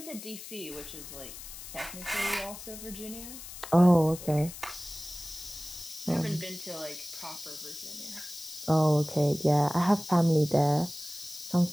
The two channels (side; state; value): left; noise; hiss, 12 dB below the sound